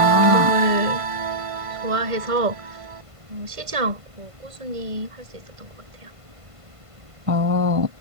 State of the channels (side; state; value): left; late; 1.5 ms